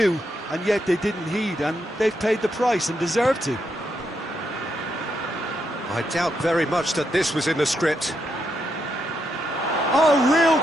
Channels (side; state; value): both; normal; correlation 0.81